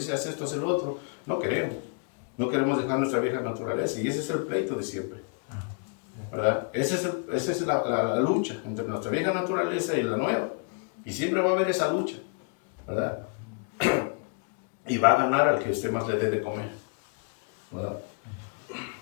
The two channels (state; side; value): quieter; right; 38.0 dB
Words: haz esto, haz el otro, no queremos. No queremos dejar nuestra vieja naturaleza. Y ese es el pleito de siempre, ¿verdad? Esa es la lucha entre nuestra vieja naturaleza y la nueva. Y siempre va a haber esa lucha, ¿verdad? Y va a ganar al que usted más le dé de comer, ¿verdad?